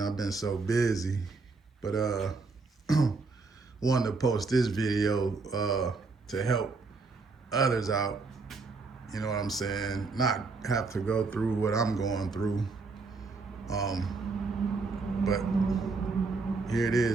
I've been so busy. But wanted to post this video to help others out. You know what I'm saying? Not have to go through what I'm going through. But here it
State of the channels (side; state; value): left; quieter; 4.1 dB